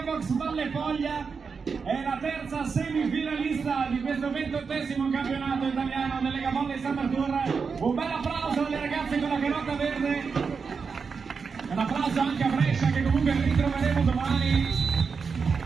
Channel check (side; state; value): left; quieter; 5.4 dB